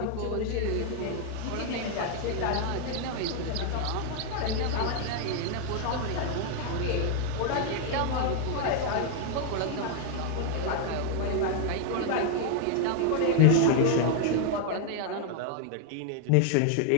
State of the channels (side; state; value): both; different; correlation 0.00